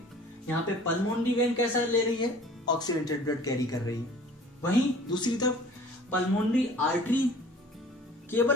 यहाँ पे पल्मोनरी वेन कैसा ले रही है? ऑक्सीजनेटेड ब्लड कैरी कर रही है। वहीं दूसरी तरफ पल्मोनरी आर्टरी,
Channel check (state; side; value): normal; both; correlation 0.48